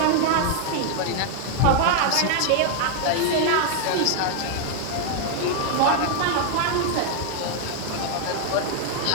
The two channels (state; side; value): different; both; correlation 0.00